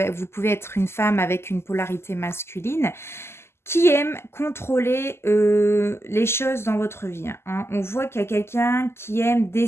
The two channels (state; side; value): late; right; 0.12 ms